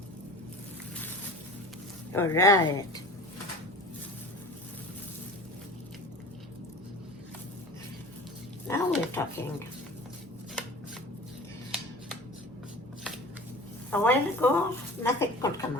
All right. Now we're talking. A while ago, nothing could come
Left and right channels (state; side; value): normal; both; correlation 0.39